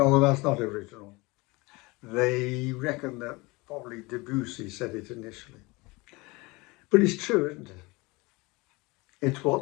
that's not original. They reckon that probably Debussy said it initially. But it's true, isn't it? It's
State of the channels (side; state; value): right; quieter; 24.2 dB